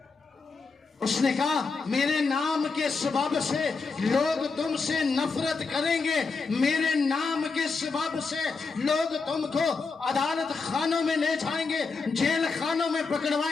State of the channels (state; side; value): quieter; right; 4.5 dB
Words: उसने कहा मेरे नाम के सबब से लोग तुमसे नफरत करेंगे, मेरे नाम के सबब से लोग तुमको अदालत खानों में ले जाएंगे, जेल खानों में